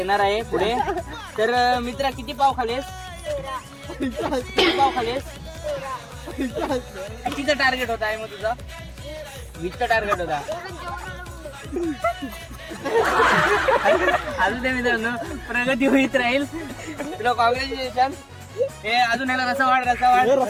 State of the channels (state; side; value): identical; both; correlation 1.00